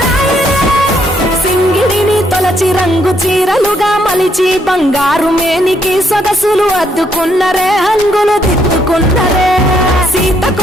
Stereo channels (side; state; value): both; normal; correlation 0.72